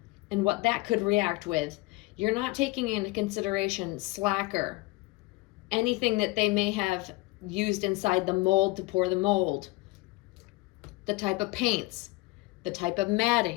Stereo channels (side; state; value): right; quieter; 21.7 dB